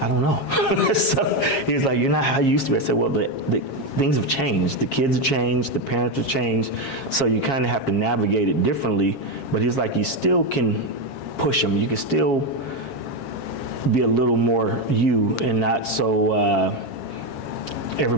don't know. So he's like, you're not how you used to be. I said, well, the things have changed. The kids have changed. The parents have changed. So you kind of have to navigate it differently. But he's like, you still can push them. You can still be a little more you and not so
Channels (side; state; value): right; late; 7.4 ms